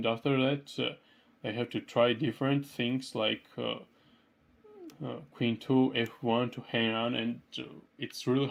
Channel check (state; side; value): identical; both; correlation 1.00